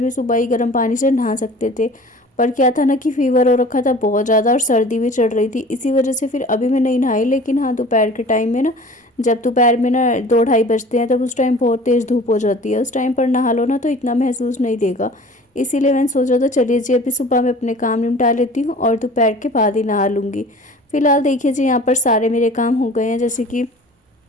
सुबह ही गर्म पानी से नहा सकते थे। पर क्या था ना कि फ़ीवर हो रखा था बहुत ज़्यादा और सर्दी भी चढ़ रही थी, इसी वजह से फिर अभी मैं नहीं नहाई। लेकिन हाँ, दोपहर के टाइम में ना, जब दोपहर में ना 2-2:30 बजते हैं, तब उस टाइम बहुत तेज़ धूप हो जाती है। उस टाइम पर नहा लो ना तो इतना महसूस नहीं देगा। इसीलिए मैंने सोचा था चलिए जी अभी सुबह में अपने काम निपटा लेती हूँ और दोपहर के बाद ही नहा लूँगी। फ़िलहाल देखिए जी, यहाँ पर सारे मेरे काम हो गए हैं। जैसे कि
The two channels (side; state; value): both; normal; correlation 0.44